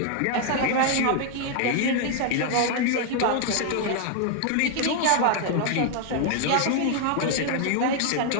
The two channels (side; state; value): both; different; correlation 0.00